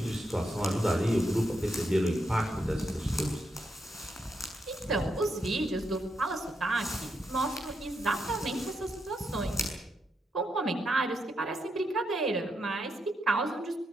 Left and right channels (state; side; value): normal; both; correlation 0.82